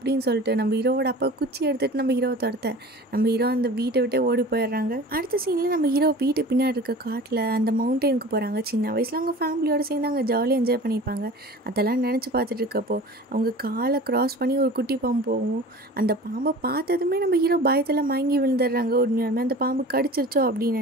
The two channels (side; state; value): both; normal; correlation 0.39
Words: சொல்லிட்டு நம்ம ஹீரோவோட அப்பா குச்சி எடுத்துகிட்டு நம்ம ஹீரோவை துரத்த நம்ம ஹீரோ அந்த வீட்டை விட்டே ஓடி போயிடுறாங்க. அடுத்த சீனில் நம்ம ஹீரோ வீட்டு பின்னாடி இருக்க காட்டில் அந்த மவுண்டெயினுக்கு போகிறாங்க. சின்ன வயசில் அவங்க ஃபேமிலியோடு சேர்ந்து அங்கே ஜாலியாக என்ஜாய் பண்ணியிருப்பாங்க. அதெல்லாம் நினச்சி பார்த்துட்டு இருக்கப்போ அவங்க காலை க்ராஸ் பண்ணி ஒரு குட்டி பாம்பு போகும். அந்த பாம்பை பார்த்ததுமே நம்ம ஹீரோ பயத்தில் மயங்கி விழுந்துடுறாங்க. உண்மையாலுமே அந்த பாம்பு கடிச்சிருச்சோ அப்படின்னு